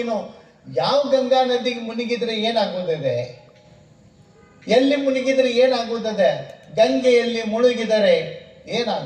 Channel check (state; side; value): identical; both; correlation 1.00